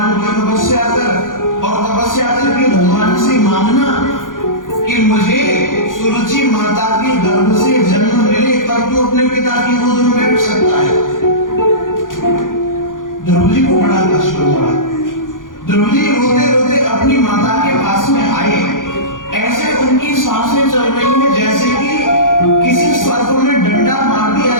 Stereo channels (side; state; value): right; late; 0.89 ms